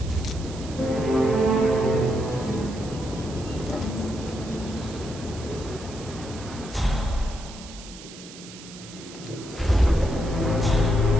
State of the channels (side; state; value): right; noise; hiss, 16 dB below the sound